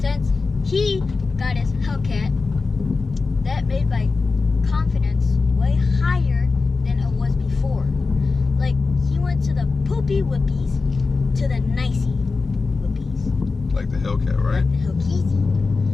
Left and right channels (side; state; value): right; quieter; 4.2 dB